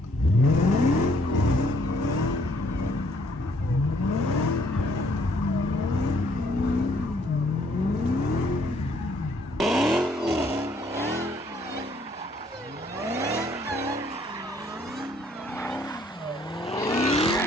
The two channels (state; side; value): normal; both; correlation 0.65